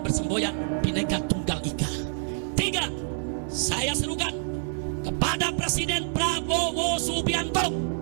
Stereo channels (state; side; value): silent; left; 60 dB below the other